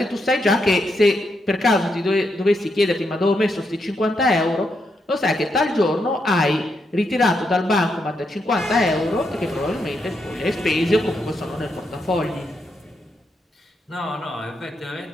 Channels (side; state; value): both; normal; correlation 0.81